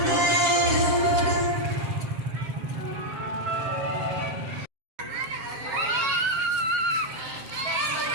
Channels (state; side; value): late; left; 7.4 ms